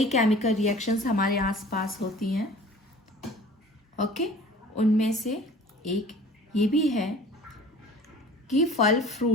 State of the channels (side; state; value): both; normal; correlation 0.45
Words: chemical reactions हमारे आसपास होती हैं, ओके। उनमें से एक ये भी है कि फल